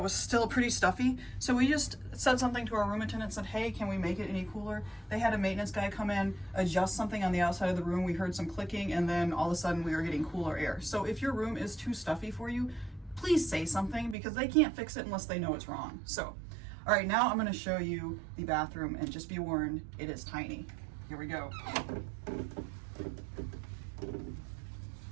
was still pretty stuffy. So we just said something to our room attendant and said, hey, can we make it any cooler? They had a maintenance guy come in, adjust something on the outside of the room. We heard some clicking and then all of a sudden we were getting cooler air. So if your room is too stuffy for you, please say something because they can't fix it unless they know it's wrong. So, all right, now I'm gonna show you the bathroom and just be warned, it is tiny. Here we go.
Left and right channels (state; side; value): drops out; left; at 14.2 s